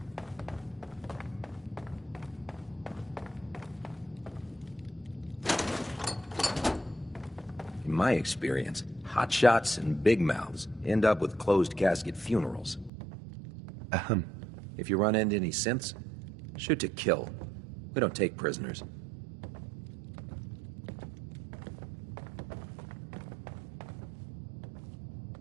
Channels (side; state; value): left; drops out; at 12.9 s